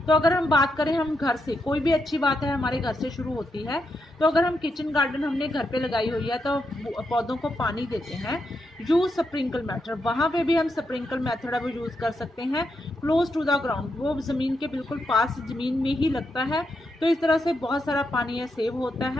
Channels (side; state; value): both; normal; correlation 0.83